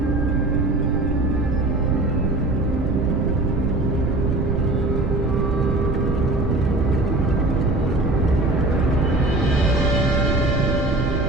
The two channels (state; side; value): noise; right; rumble, 1 dB below the sound